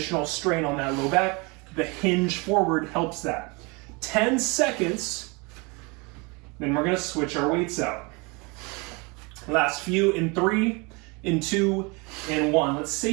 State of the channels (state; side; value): quieter; left; 28.4 dB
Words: strain on that low back. The hinge forward helps that. 10 seconds, then we're going to switch our weights out. Last few in 3, in 2, in 1. Let's